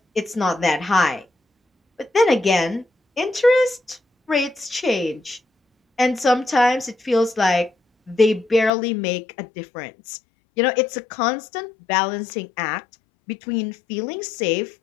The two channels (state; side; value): drops out; right; at 8.7 s